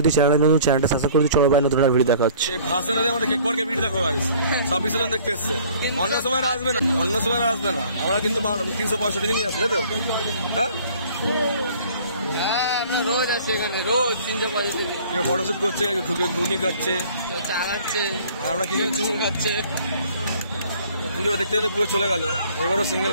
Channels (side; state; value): both; inverted; correlation -0.53